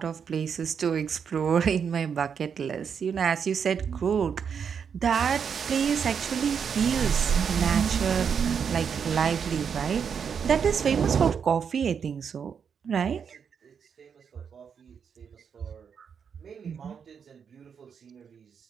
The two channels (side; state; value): left; quieter; 7.0 dB